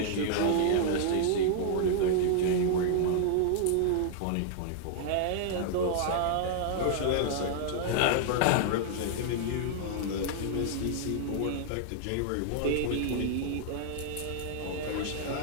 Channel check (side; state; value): both; different; correlation -0.01